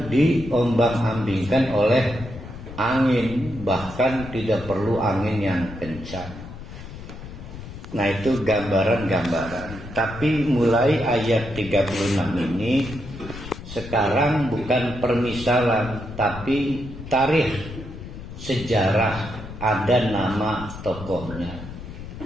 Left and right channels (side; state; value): left; noise; rumble, 12 dB below the sound